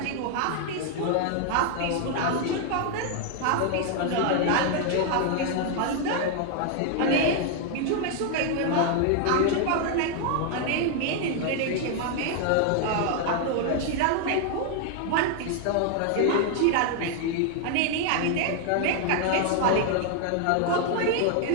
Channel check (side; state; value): both; different; correlation 0.00